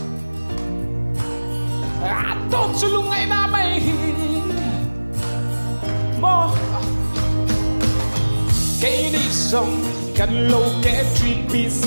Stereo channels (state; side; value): inverted; both; correlation -1.00